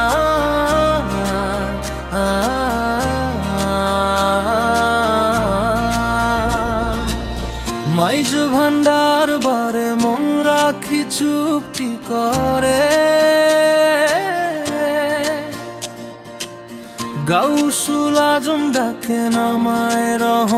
ভান্ডার বারে মন রাখি চুপটি করে গাউসুল আজম ডাকে নামায়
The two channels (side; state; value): both; identical; correlation 1.00